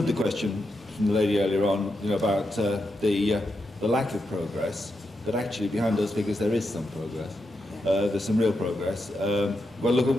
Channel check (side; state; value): both; normal; correlation 0.85